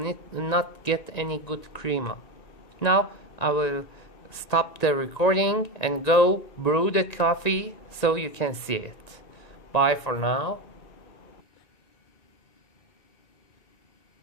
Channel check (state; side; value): late; right; 1.9 ms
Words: not get any good crema. Now I will stop the recording and go brew the coffee so you can see it. Bye for now.